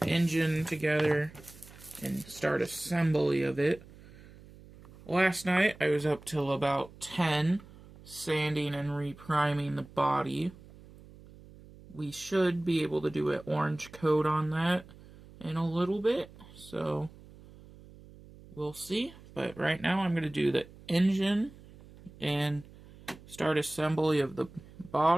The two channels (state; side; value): noise; right; hum, 21 dB below the sound